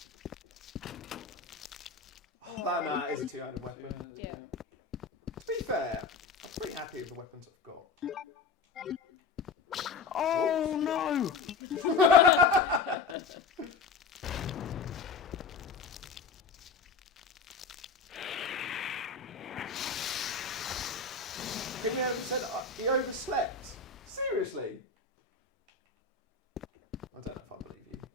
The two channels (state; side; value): quieter; right; 4.9 dB